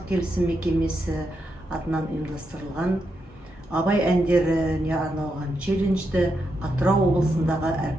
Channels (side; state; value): both; normal; correlation 0.83